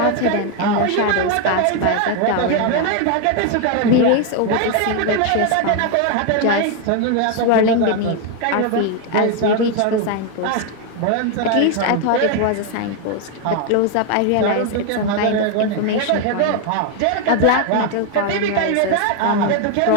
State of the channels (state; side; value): different; both; correlation 0.01